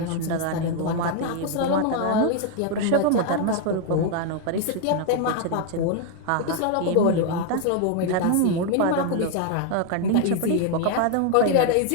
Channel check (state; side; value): different; both; correlation 0.00